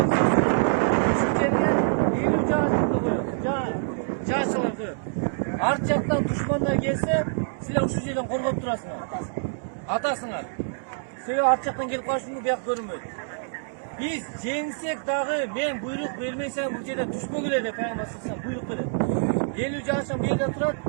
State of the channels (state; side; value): silent; left; digital silence